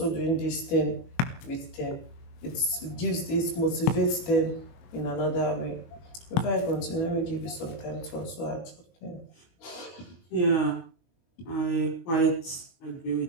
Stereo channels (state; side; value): late; right; 23 ms